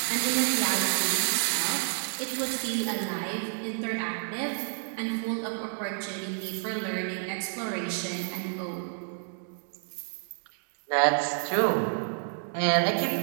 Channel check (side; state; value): left; silent; digital silence